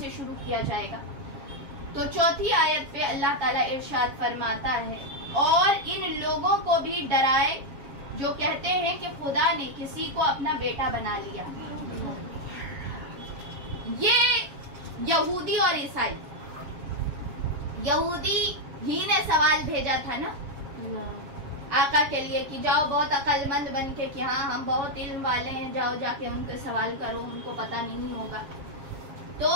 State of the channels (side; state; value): left; late; 7.3 ms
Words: شروع کیا جائے گا۔ تو 4تھی آیت پہ اللہ تعالیٰ ارشاد فرماتا ہے اور ان لوگوں کو بھی ڈرائے جو کہتے ہیں کہ خدا نے کسی کو اپنا بیٹا بنا لیا۔ یہ یہودی اور عیسائی، یہودی ہی نے سوال بھیجا تھا نا آقا کے لیے کہ جاؤ بہت عقل مند بن کے کہ ہاں ہم بہت علم والے ہیں، جاؤ جا کے ان کے سوال کرو، ان کو پتہ نہیں ہوگا۔ تو